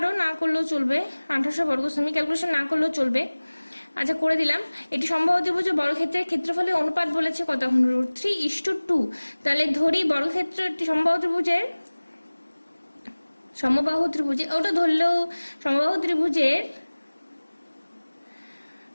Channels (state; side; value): inverted; both; correlation -1.00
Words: না করলেও চলবে, 1800 বর্গ সেমি, ক্যালকুলেশন না করলেও চলবে। আচ্ছা করে দিলাম। এটি সমবাহু ত্রিভুজের বর্গক্ষেত্রের ক্ষেত্রফলের অনুপাত বলেছে কত, এখন √3:2। তাহলে ধরি বর্গক্ষেত্রটি সমবাহু ত্রিভুজে ওটা ধরলেও সমবাহু ত্রিভুজের